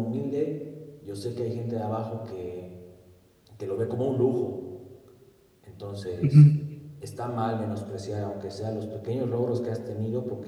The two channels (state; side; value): identical; both; correlation 1.00